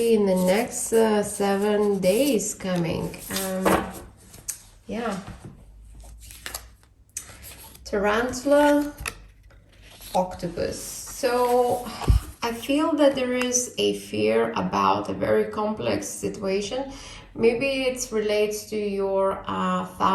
in the next 7 days coming. Yeah, Tarantula, Octopus. So I feel that there is a fear about a very complex situation. Maybe it relates to your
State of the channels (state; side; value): identical; both; correlation 1.00